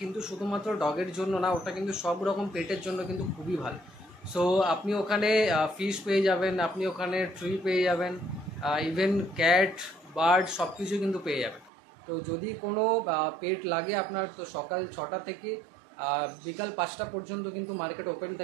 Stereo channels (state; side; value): drops out; left; at 11.7 s